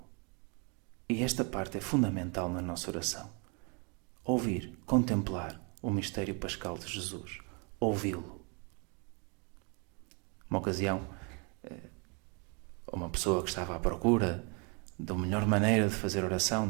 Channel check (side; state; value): left; quieter; 34.5 dB